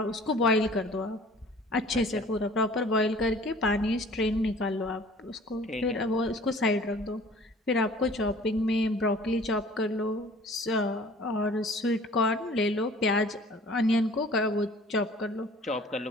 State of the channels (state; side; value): normal; both; correlation 0.49